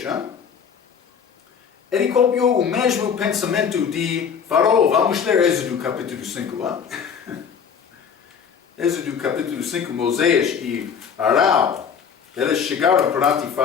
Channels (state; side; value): quieter; right; 7.0 dB